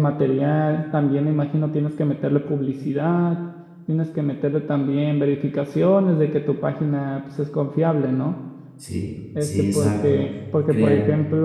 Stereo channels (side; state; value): both; identical; correlation 1.00